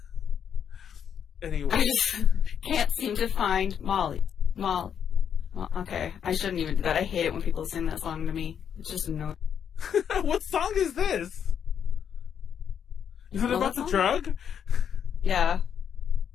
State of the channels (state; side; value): quieter; right; 8.2 dB